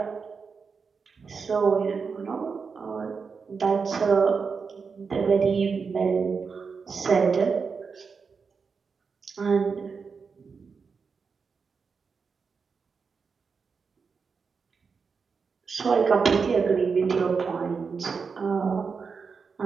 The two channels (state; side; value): quieter; left; 5.4 dB